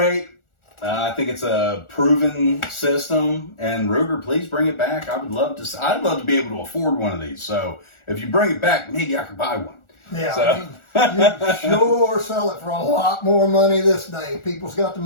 I think it's a proven system, and Ruger, please bring it back. I'd love to be able to afford one of these. So if you bring it back, maybe I could buy one. Yeah, So. you sure sell it for a lot more money this day. People's got the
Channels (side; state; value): right; late; 1.4 ms